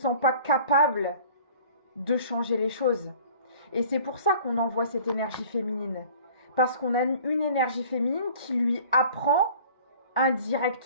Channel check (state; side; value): inverted; both; correlation -0.48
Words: pas capable de changer les choses. Et c'est pour ça qu'on envoie cette énergie féminine. Parce qu'on a une énergie féminine qui lui apprend